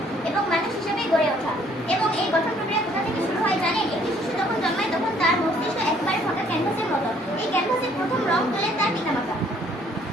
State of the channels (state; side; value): normal; both; correlation 0.62